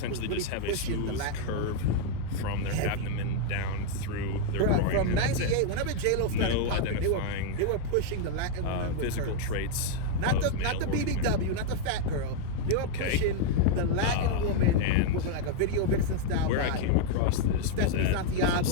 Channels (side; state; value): both; different; correlation 0.00